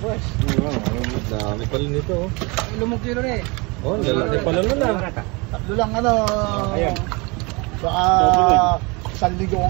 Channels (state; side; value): quieter; left; 27.5 dB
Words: Dami pala nito. Lumog kilo rin. Lalaki pala na. Tatlo lang baka isang ligo